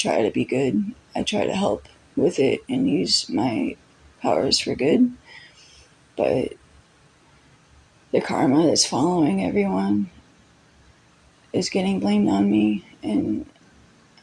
to be good. I try to help with it and use my powers for good. But the karma that's following everyone is getting blamed on me, and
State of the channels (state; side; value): identical; both; correlation 1.00